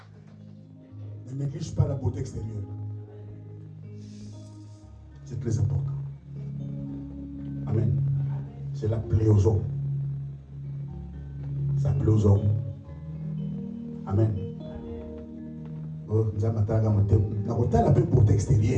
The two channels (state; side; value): identical; both; correlation 1.00